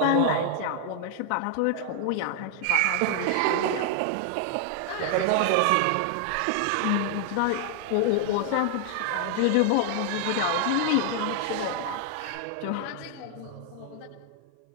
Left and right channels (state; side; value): different; both; correlation 0.00